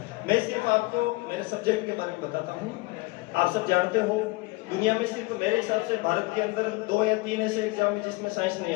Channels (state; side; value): quieter; right; 23.2 dB